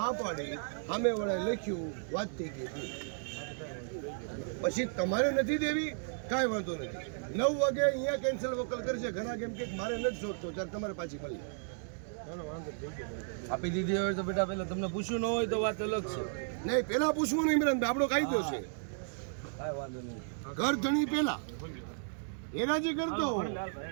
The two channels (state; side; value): silent; left; digital silence